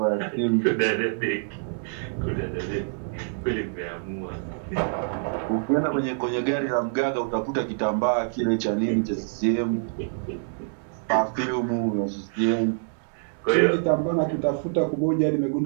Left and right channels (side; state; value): left; silent; digital silence